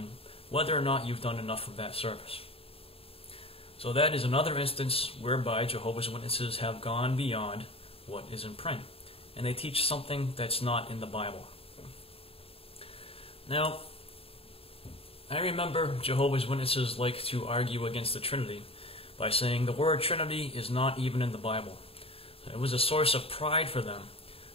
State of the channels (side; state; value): right; late; 0.27 ms